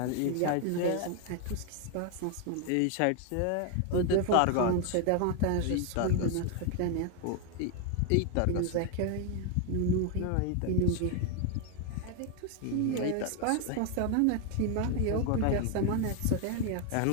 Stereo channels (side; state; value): both; different; correlation 0.01